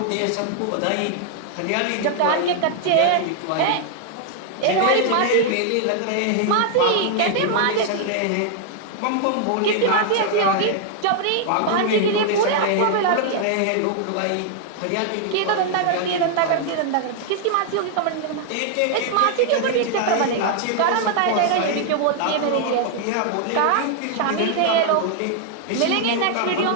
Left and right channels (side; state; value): both; different; correlation 0.00